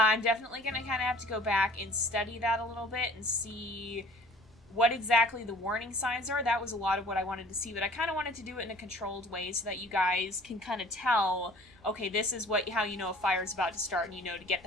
definitely going to kind of have to go back and study that a little bit and see what exactly the warning signs are. That was a lot of what I wanted to see, but I kind of wanted to do it in a controlled way so that you guys can kind of tell, okay, this is how you know a fire's about to start and you know to get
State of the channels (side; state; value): both; normal; correlation 0.51